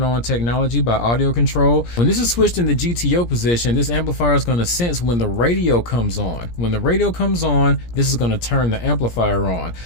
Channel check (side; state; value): right; late; 17 ms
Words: On Technology by Audiocontrol. When this is switched in the GTO position, this amplifier is going to sense when the radio comes on. When the radio comes on, this is going to turn the amplifier on.